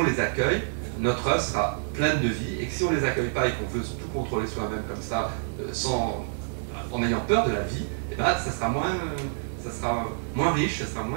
les accueille, notre œuvre sera pleine de vie, et que si on ne les accueille pas et qu'on veut tout contrôler soi-même comme ça, en ayant peur de la vie, eh ben, ça sera moins riche, ça sera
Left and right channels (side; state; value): left; silent; digital silence